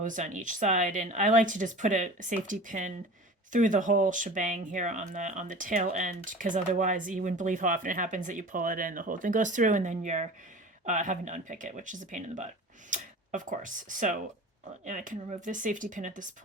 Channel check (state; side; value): normal; both; correlation 0.38